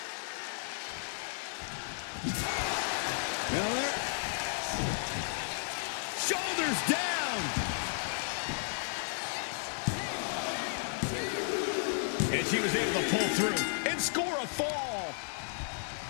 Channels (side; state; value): right; silent; digital silence